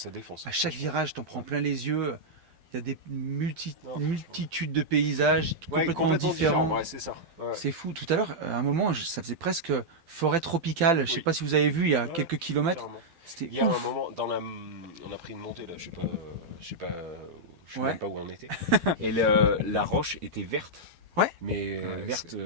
défonce. À chaque virage t'en prends plein les yeux, il y a des multitudes de paysages complètement différents. Ouais, c'est ça. Ouais. C'est fou. Tout à l'heure, à un moment, ça faisait presque forêt tropicale. Oui. Je sais pas si vous avez vu, il y a quelques kilomètres. C'était il y a un moment, on a pris une montée là, je sais même pas où on était. Et la roche était verte. Ouais. Mais verte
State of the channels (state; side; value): late; left; 12 ms